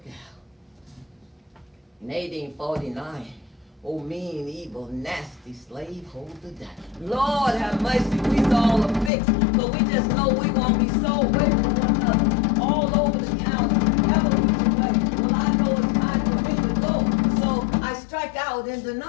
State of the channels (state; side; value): drops out; right; at 9.1 s